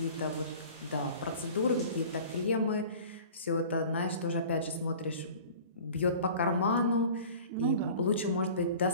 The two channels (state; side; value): inverted; both; correlation -0.43